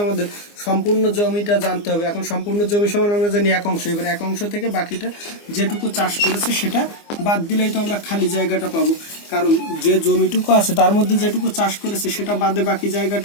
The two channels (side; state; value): right; late; 24 ms